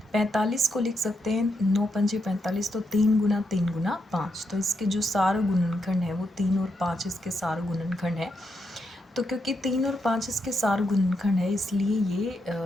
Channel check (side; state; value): both; normal; correlation 0.82